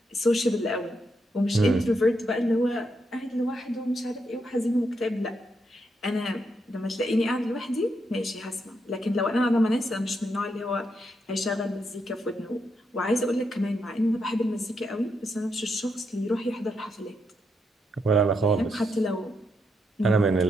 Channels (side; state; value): both; normal; correlation 0.81